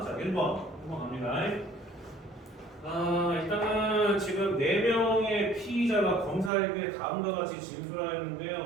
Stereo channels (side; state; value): left; drops out; at 6.5 s